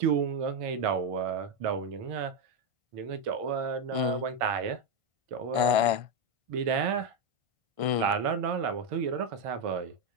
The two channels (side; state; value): left; late; 1.5 ms